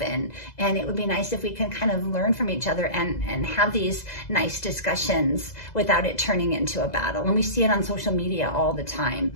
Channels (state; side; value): late; right; 2.0 ms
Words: And it would be nice if we can kind of learn from each other and have these nice discussions without it turning into a battle. And we see it on social media all the time,